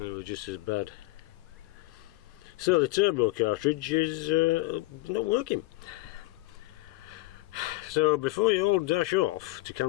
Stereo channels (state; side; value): quieter; right; 19.6 dB